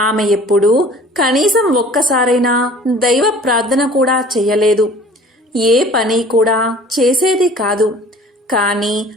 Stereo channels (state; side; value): normal; both; correlation 0.48